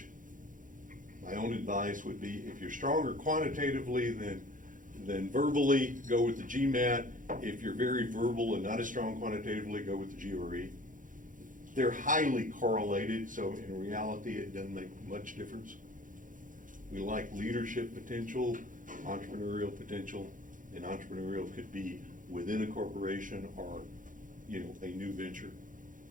My own advice would be if you're stronger quantitatively than verbally, go with the GMAT. If you're very verbal and not as strong quantitatively, go with the GRE. They're highly correlated, so in reality it doesn't make much difference. We like leadership potential, entrepreneurial potential, and entrepreneurial could be within a corporation or, you know, a new venture.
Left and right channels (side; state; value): left; late; 0.38 ms